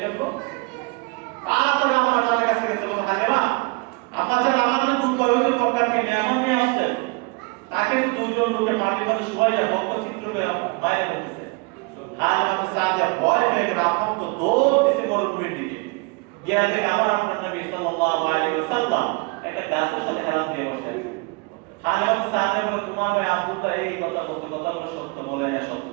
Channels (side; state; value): left; quieter; 28.1 dB